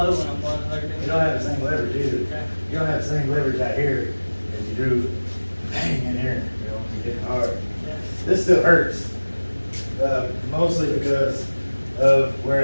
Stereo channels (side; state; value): both; inverted; correlation -1.00